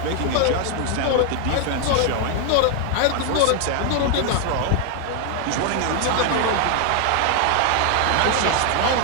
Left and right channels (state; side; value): different; both; correlation 0.00